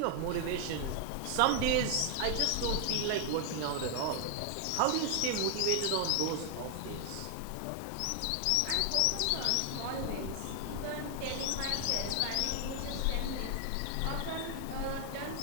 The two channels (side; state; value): both; different; correlation 0.00